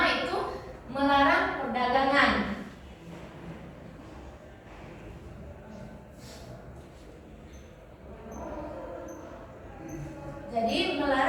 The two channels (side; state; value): both; identical; correlation 1.00